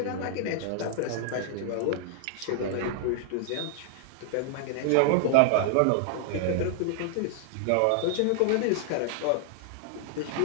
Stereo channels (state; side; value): different; both; correlation -0.01